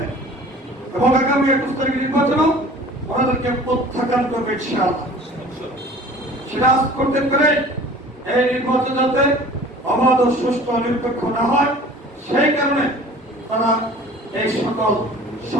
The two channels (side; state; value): both; normal; correlation 0.45